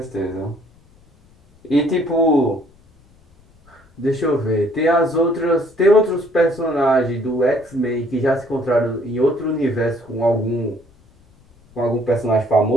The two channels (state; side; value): noise; left; rumble, 30 dB below the sound